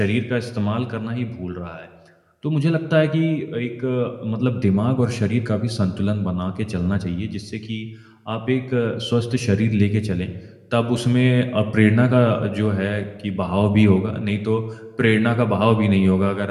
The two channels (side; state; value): both; identical; correlation 1.00